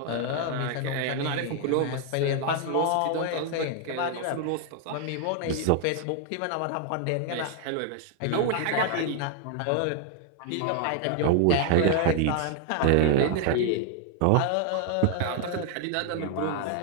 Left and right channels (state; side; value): different; both; correlation 0.00